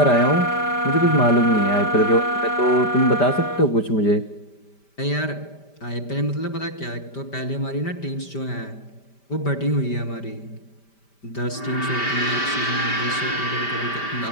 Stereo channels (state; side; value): late; right; 5.1 ms